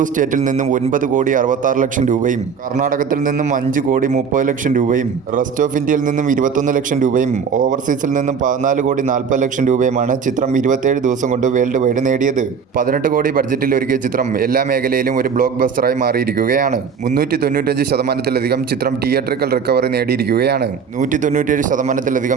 സ്റ്റേറ്റിൽ നിന്നും 9 കോടി 66 ലക്ഷം രൂപയും കർണാടകത്തിൽ നിന്നും 5 കോടി 30 ലക്ഷം രൂപയും റെസ്റ്റ് ഓഫ് ഇന്ത്യയിൽ നിന്നും 21 ലക്ഷം രൂപയും ഓവർസീസിൽ നിന്നും 14 കോടി 40 ലക്ഷം രൂപയുമാണ് ചിത്രം 27 ദിവസം കൊണ്ട് വേൾഡ് വൈഡ് നേടിയത്. 18 കോടി ബഡ്ജറ്റിൽ ഒരുക്കിയ ചിത്രം എല്ലാ മേഖലയിലും ഒരു ബ്ലോക്ക് ബസ്റ്ററായി മാറിയിരിക്കുകയാണ്. 395% ചിത്രം തിയേറ്ററിക്കൽ റിക്കവറി നേടിയിരിക്കുകയാണ്.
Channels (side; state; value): left; quieter; 6.4 dB